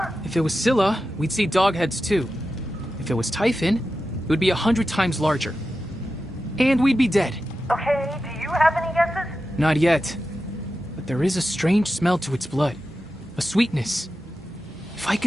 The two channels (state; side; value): normal; both; correlation 0.91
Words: If it was Scylla, we'd see dogheads too. If it was Typhon, it would be 100 times larger. And we'd be dead. Okay, do you have any guesses? Not yet. But there is a strange smell to its blood. A sweetness. If I